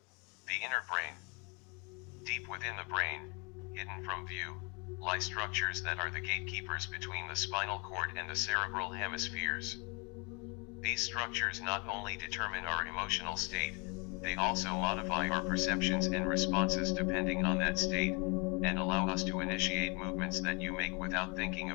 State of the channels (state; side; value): quieter; right; 31.5 dB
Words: The inner brain. Deep within the brain, hidden from view, lie structures that are the gatekeepers between the spinal cord and the cerebral hemispheres. These structures not only determine our emotional state, they also modify our perceptions and responses depending on that state, and allow us to initiate movements that you make without thinking